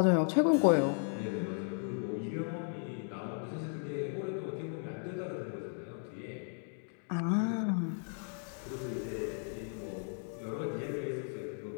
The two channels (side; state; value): right; silent; 54 dB below the other